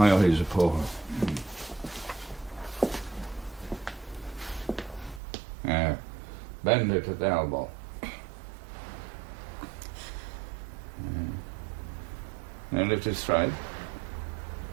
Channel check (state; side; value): drops out; left; at 5.2 s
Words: eyes are poor. Yeah. Bend it at the elbow. Yeah. Now lift it straight.